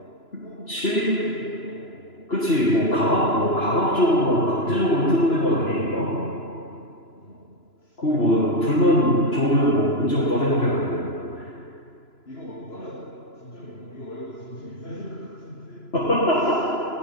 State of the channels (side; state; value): right; late; 3.0 ms